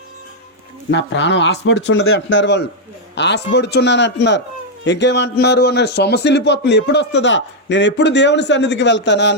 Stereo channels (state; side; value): normal; both; correlation -0.01